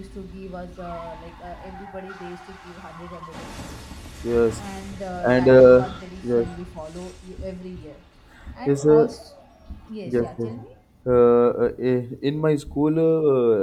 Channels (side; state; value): both; identical; correlation 1.00